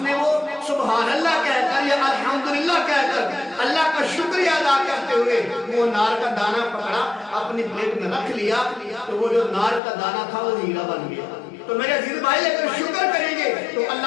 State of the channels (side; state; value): right; drops out; at 9.8 s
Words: نے وہ سبحان اللہ کہہ کر یا الحمدللہ کہہ کر اللہ کا شکریہ ادا کرتے ہوئے وہ انار کا دانہ پکڑا، اپنی پلیٹ میں رکھ لیا، تو وہ جو انار کا دانہ تھا وہ ہیرا بن گیا۔ تو میرے عزیز بھائی اگر شکر کریں گے تو